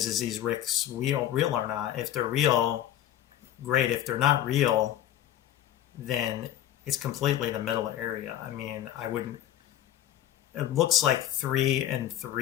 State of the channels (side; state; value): right; quieter; 11.9 dB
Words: these RICs real or not? If they're real, great. If they're not real, then it's completely the middle area. I mean, I wouldn't. It looks like 3 and